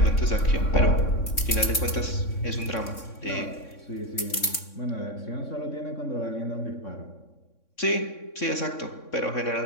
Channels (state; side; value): late; right; 3.6 ms